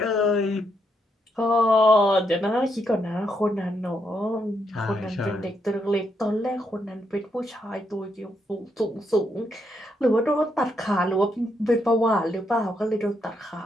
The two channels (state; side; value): normal; both; correlation 0.78